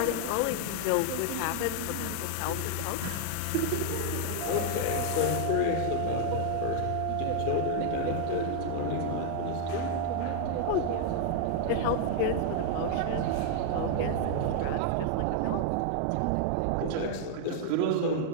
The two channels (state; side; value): different; both; correlation 0.00